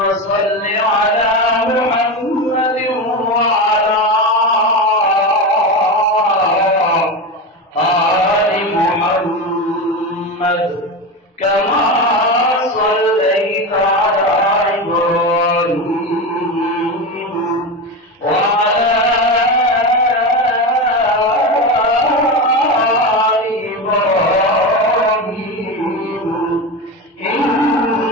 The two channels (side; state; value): both; normal; correlation 0.20